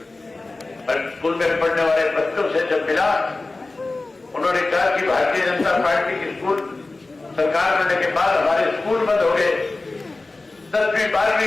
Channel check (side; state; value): right; quieter; 3.3 dB